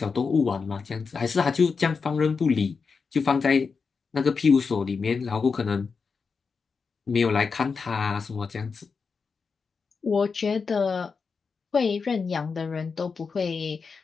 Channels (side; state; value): right; quieter; 5.1 dB